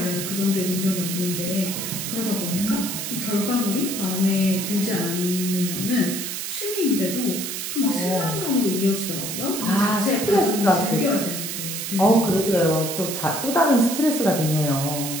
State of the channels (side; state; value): right; noise; hiss, 5 dB below the sound